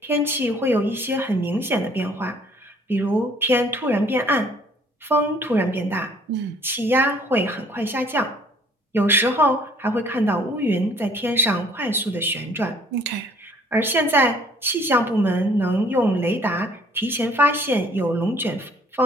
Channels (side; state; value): both; normal; correlation 0.58